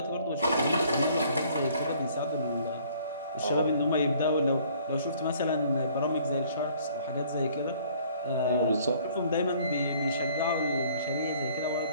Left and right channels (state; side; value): inverted; both; correlation -0.57